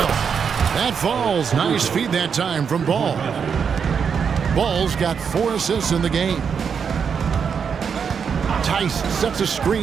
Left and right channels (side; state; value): left; quieter; 6.7 dB